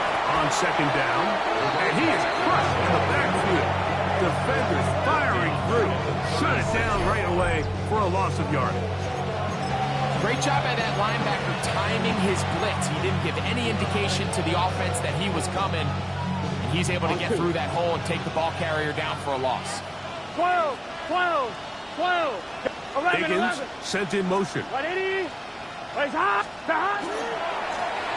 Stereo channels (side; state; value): both; identical; correlation 1.00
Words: on second down. And he is crushed in the backfield. Defenders firing through. Shut it down right away for a loss of yardage. Great job by that linebacker timing his blitz. He didn't give any indication to the offense that he was coming. And he's able to get through that hole and take the ball carrier down for a loss. 12, 12, 12. 11, Higgins 11. sent in motion. 180. Plays hot. Hot.